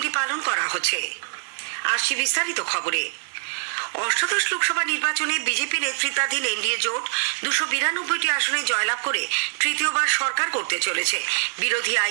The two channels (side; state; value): left; silent; 63 dB below the other